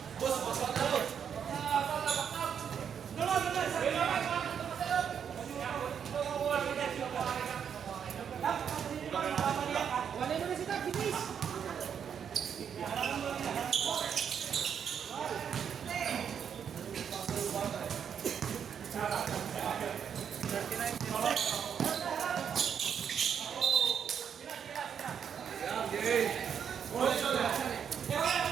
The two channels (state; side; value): quieter; left; 7.8 dB